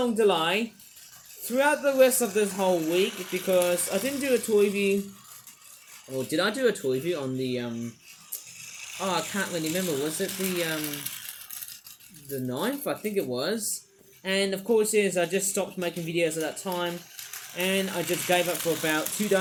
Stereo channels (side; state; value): both; identical; correlation 1.00